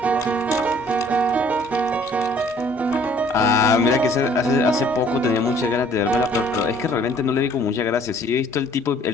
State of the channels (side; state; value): both; normal; correlation 0.57